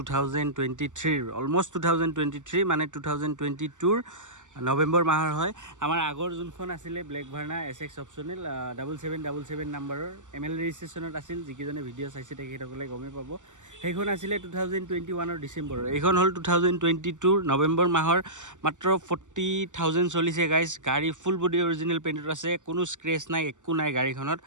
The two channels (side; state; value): left; late; 0.86 ms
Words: অলমষ্ট 2023 মানে 2022 নৱেম্বৰ মাহৰ হয়। আমাৰ আগৰ যোনখন আছিলে ব্লেক ভাৰ্না SX অপশ্যনেল 7777 নাম্বাৰৰ ML ৰেজিষ্ট্ৰেশ্যনত আছিল। যিকেইজনে ভিডিঅ' চাইছে তেখেতসকলে গমেই পাব। সেইখন আছিলে 2021 ডিচেম্বৰৰ। এইখন হ'ল 2022 নৱেম্বৰ মাহৰ। মাত্ৰ 40,000 চলিছে গাইজ। গাড়ী ফুল বডি অৰিজিনেল পেইণ্টত আছে, কোনো স্ক্ৰেচ নাই, একো নাই গাড়ীখনত।